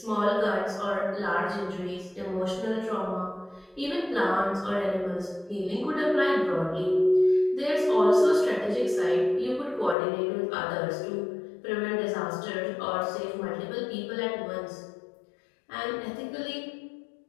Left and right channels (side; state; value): right; drops out; at 10.0 s